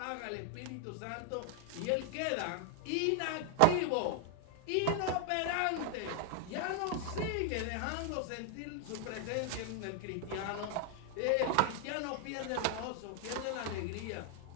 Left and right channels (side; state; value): both; different; correlation 0.00